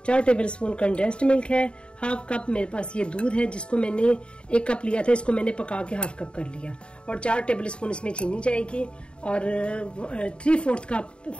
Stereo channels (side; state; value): right; late; 0.054 ms